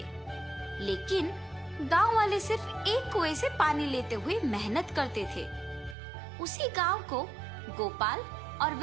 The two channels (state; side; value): drops out; left; at 6.0 s